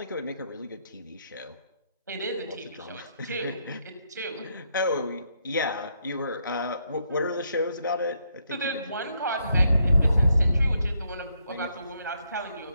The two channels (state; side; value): inverted; both; correlation -0.75